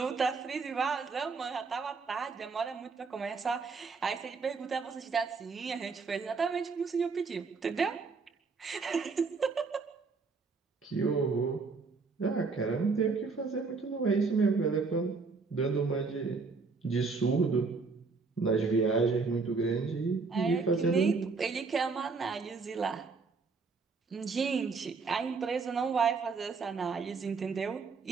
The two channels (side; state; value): left; quieter; 4.6 dB